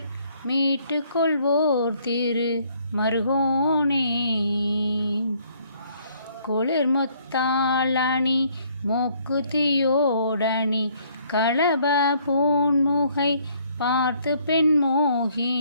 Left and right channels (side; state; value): both; inverted; correlation -0.65